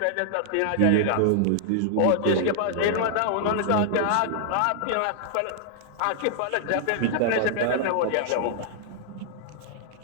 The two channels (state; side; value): different; both; correlation -0.01